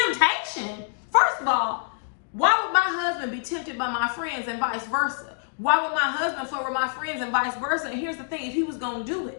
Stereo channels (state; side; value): silent; right; digital silence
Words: First of all, why would my husband be tempted by my friends and vice versa? Why would my husband flirt with my friends and vice versa? And here's the thing, if he was going to do